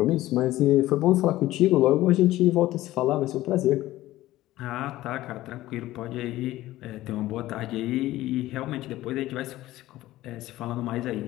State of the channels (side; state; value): right; quieter; 16.0 dB